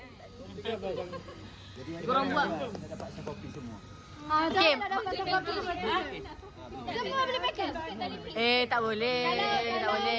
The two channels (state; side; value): identical; both; correlation 1.00